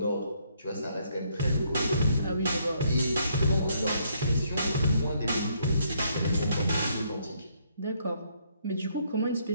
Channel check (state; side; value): inverted; both; correlation -0.71